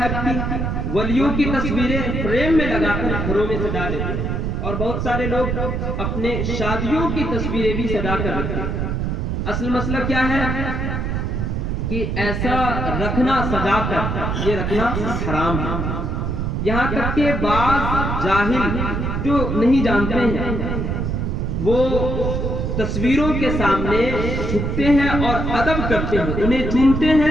کی ولیوں کی تصویریں فریم میں لگا کر گھروں میں سجا دیتے ہیں اور بہت سارے لوگ اپنے شادیوں کی تصویریں بھی سجا کر رکھتے ہیں۔ اصل مسئلہ کیا ہے کہ ایسا رکھنا سجا کر یہ رکھنا حرام ہے۔ یہاں تک کہ بعض جاہل جو نہیں جانتے ہیں وہ تصویروں کے سامنے جھکتے ہیں اور ادب کرتے ہیں، انہیں چومتے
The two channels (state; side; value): noise; right; rumble, 1 dB below the sound